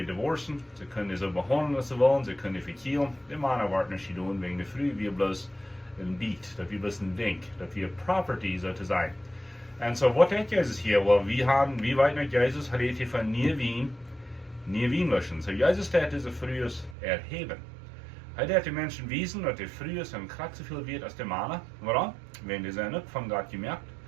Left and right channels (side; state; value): left; drops out; at 16.9 s